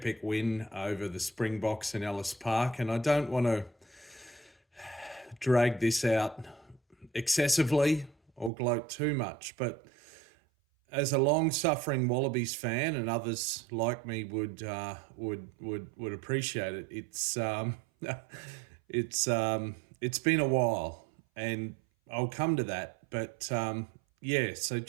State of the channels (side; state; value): left; drops out; at 8.5 s